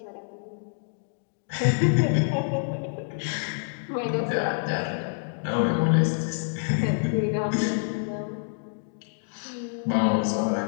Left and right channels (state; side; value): silent; right; digital silence